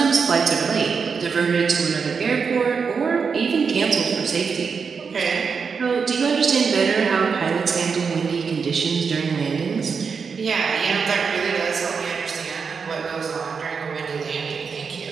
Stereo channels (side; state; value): left; quieter; 5.7 dB